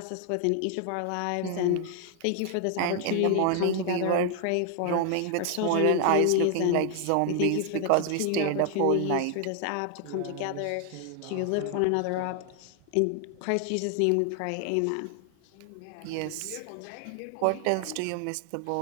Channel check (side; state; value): both; different; correlation 0.00